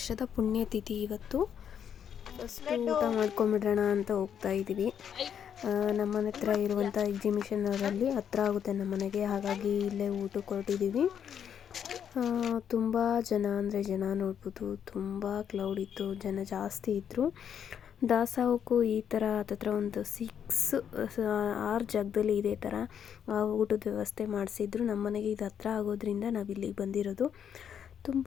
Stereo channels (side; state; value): right; quieter; 8.5 dB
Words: ಪುಣ್ಯತಿಥಿ ಇವತ್ತು. ಫಸ್ಟ್ ಊಟ ಮಾಡ್ಕೊಂಬಿಡೋಣ ಅಂತ ಹೋಗ್ತಾ ಇದ್ದೀವಿ. ನಮ್ಮನೆ ಹತ್ರ ಇರುವಂಥ ಎಕ್ಸಿಬಿಷನ್ ಅವರಲ್ಲಿ ಹತ್ರ ಆಗುತ್ತೆ ನಮ್ಮನೆಗೆ, ಹಾಗಾಗಿ ಇಲ್ಲೇ ಊಟಕ್ಕೆ ಹೊರಟಿದ್ದೀವಿ. ತುಂಬ ಜನ ನೋಡ್ಬೋದು, ತುಂಬ ಕ್ಲೌಡ್ ಇತ್ತು, ಜನ ಜಾಸ್ತಿ ಇದ್ದರು. ದಾಸೋಹಕ್ಕೂ ಈ ಥರ ಹತ್ತತ್ರ ಒಂದು 6 ಜಾಗದಲ್ಲಿ ಇದೇ ಥರ ಊಟದ ವ್ಯವಸ್ಥೆ ಮಾಡಿಸಿದ್ರು. ನಮ್ಮ ಮನೆಗೆ ಇದು ಹತ್ರ ಆಗೋದ್ರಿಂದ ನಾವು ಇಲ್ಲಿಗೆ ಬಂದಿರೋದು.